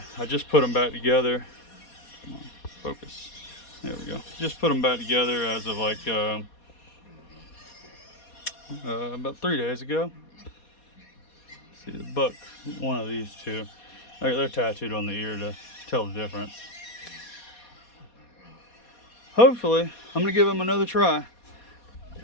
I just put them back together. Come on, focus. There we go. Just put them back together as of like about 3 days ago. See the buck, one of these two. They're tattooed on the ear to tell the difference. Hopefully, I'm gonna give him another try.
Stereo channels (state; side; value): late; right; 4.2 ms